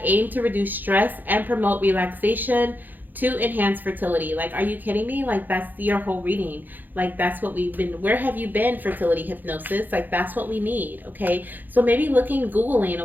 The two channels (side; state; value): left; late; 0.087 ms